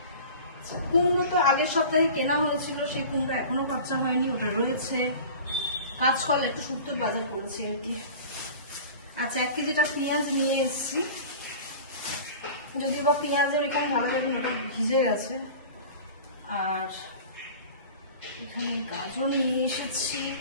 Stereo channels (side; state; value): both; inverted; correlation -0.39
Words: কুমড়ো তো আগের সপ্তাহে কেনা হয়েছিল, সেই কুমড়ো এখনো কাঁচা হয়নি, ওটা রয়েছে। কাঁচকলা একটু শুক্তোর বাজার করেছি আর কি। আচ্ছা, 1 কেজিটা পেঁয়াজ নিয়ে এসেছি, যদিও বা পেঁয়াজের এখানে ভালো লাগে, ওটা ভিজে গেছে। আর এখানে গাজর নিয়ে এসেছি।